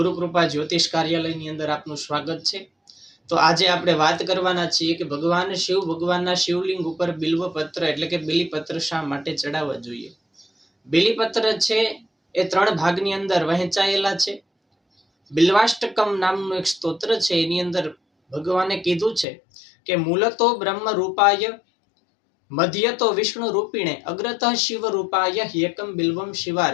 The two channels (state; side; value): drops out; right; at 19.2 s